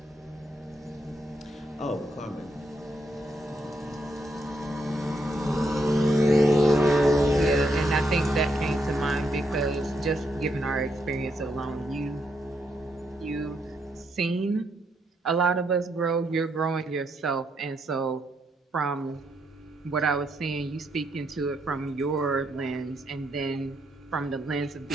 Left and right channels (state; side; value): normal; both; correlation 0.77